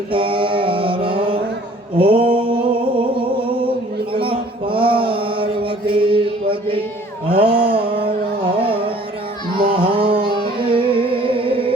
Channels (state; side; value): normal; both; correlation 0.54